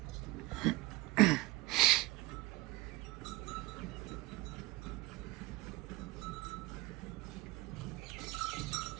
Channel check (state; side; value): quieter; left; 21.1 dB